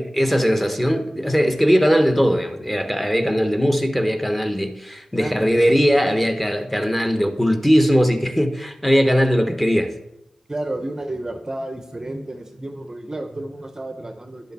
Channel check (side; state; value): both; normal; correlation 0.97